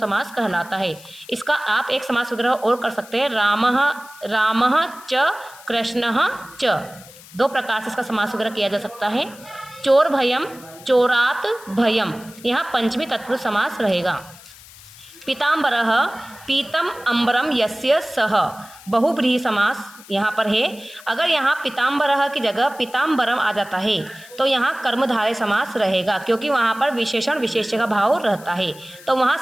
समास कहलाता है। इसका आप एक समास विग्रह और कर सकते हैं, रामः च कृष्णः च। दो प्रकार से इसका समास विग्रह किया जा सकता है। चोर भयम, चोरात भयम, यहाँ पंचमी तत्पुरुष समास रहेगा। पीताम्बरः, पीतम अम्बरम यस्य सह, बहुब्रीहि समास यहाँ पर है। अगर यहाँ पीताम्बरः की जगह पीताम्बरम आ जाता है तो यहाँ कर्मधारय समास रहेगा, क्योंकि वहाँ पर विशेषण विशेष्य का भाव रहता है, तो वहाँ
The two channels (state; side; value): noise; left; hiss, 20 dB below the sound